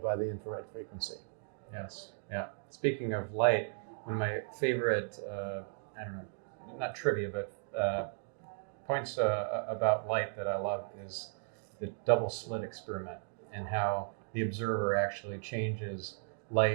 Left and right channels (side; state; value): left; silent; digital silence